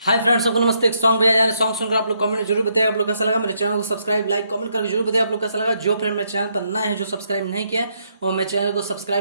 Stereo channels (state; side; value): inverted; both; correlation -0.75